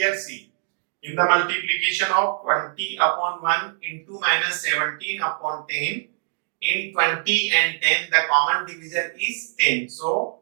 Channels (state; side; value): silent; left; digital silence